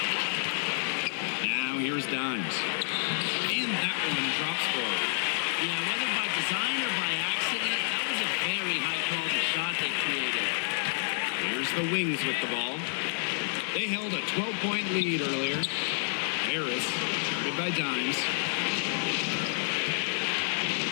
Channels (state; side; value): silent; right; 58 dB below the other